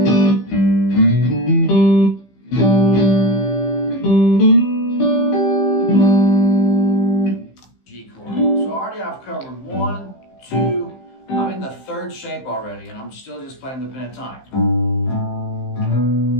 G chord. So already I've covered 1, 2, I'm in the 3rd shape already, and I'm still just playing the pentatonic.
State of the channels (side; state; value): right; late; 16 ms